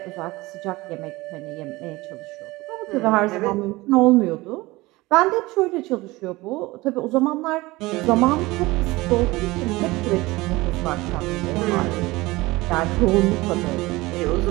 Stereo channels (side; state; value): left; quieter; 20.8 dB